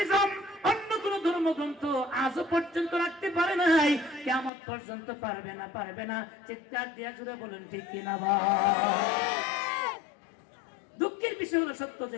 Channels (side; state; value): right; drops out; at 4.5 s